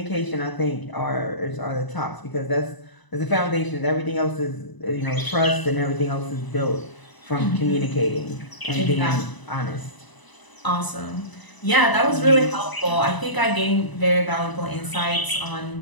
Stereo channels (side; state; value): right; late; 1.0 ms